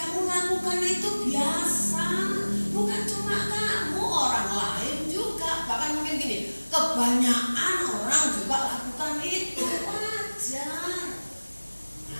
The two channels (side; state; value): both; inverted; correlation -1.00